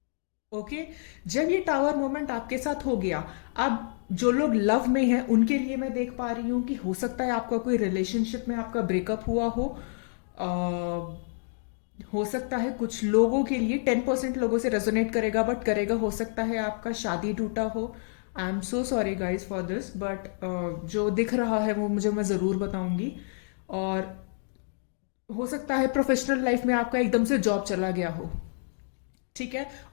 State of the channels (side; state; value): right; silent; digital silence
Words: ओके, जब ये टावर मोमेंट आपके साथ हो गया, अब जो लोग लव में हैं उनके लिए मैं देख पा रही हूं कि हो सकता है आपका कोई रिलेशनशिप में आपका ब्रेकअप हुआ हो सकता है कुछ लोगों के लिए 10% लोगों से रेजोनेट करेगा, बट करेगा। हो सकता है आपका शादी टूटा हो। I am so sorry guys for this, but जो दिख रहा है वो मैं ज़रूर बताऊंगी। और हो सकता है प्रोफेशनल लाइफ में आपका एकदम से जॉब चला गया हो। ठीक है,